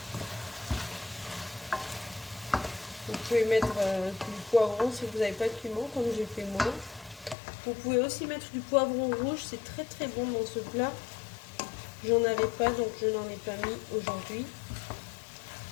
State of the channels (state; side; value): drops out; right; at 7.4 s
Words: Vous pouvez mettre du poivron si vous n'avez pas de piment, comme j'ai fait moi. Vous pouvez aussi mettre du poivron rouge, c'est très bon dans ce plat. J'en avais pas, donc je n'en ai pas mis aujourd'hui.